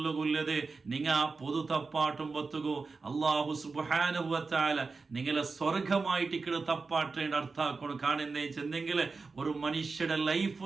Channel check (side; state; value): left; quieter; 4.3 dB